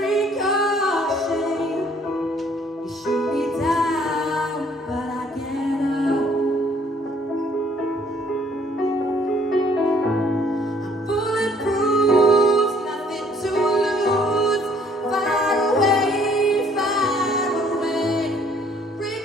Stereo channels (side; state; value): both; normal; correlation 0.61